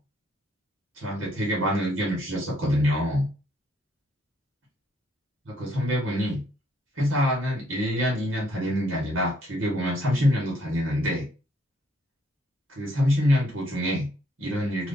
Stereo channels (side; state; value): both; normal; correlation 0.68